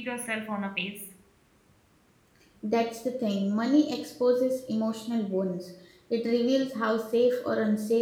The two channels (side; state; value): both; identical; correlation 1.00